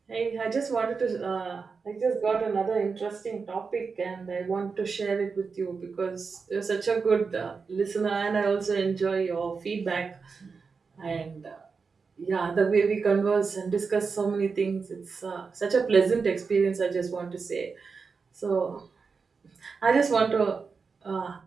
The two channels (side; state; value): left; quieter; 5.0 dB